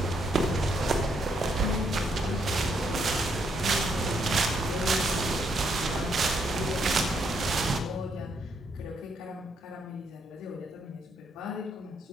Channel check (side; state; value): both; normal; correlation 0.74